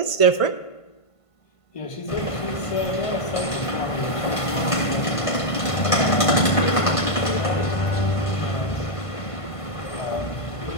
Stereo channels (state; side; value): late; right; 1.5 ms